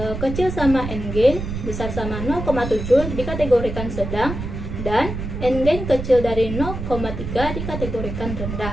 kecil sama endgain besar sama 0,7 dikategorikan sedang, dan endgain kecil dari 0,3 dikategorikan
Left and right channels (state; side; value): noise; right; rumble, 6 dB below the sound